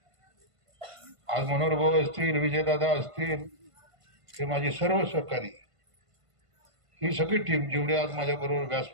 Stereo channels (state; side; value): late; left; 1.5 ms